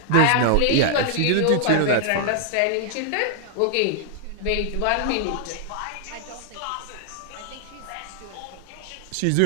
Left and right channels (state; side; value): different; both; correlation 0.00